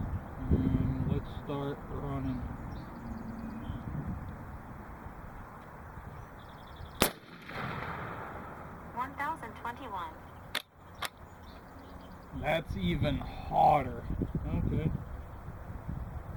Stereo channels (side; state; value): both; identical; correlation 1.00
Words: And let's start running. That's even hotter. Okay.